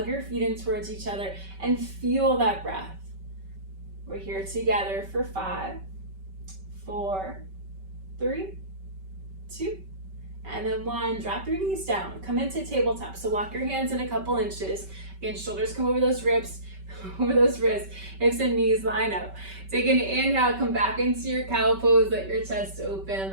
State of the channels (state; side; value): late; left; 5.2 ms